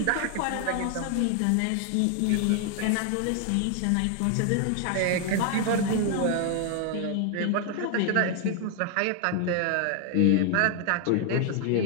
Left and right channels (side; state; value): both; different; correlation 0.00